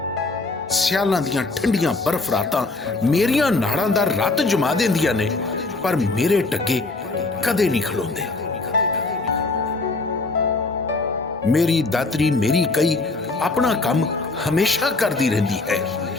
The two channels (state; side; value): quieter; right; 3.4 dB